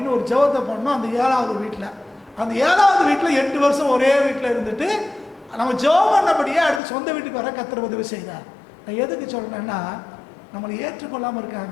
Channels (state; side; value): drops out; right; at 6.8 s